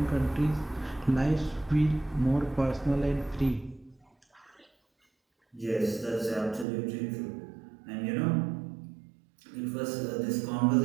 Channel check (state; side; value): drops out; left; at 6.7 s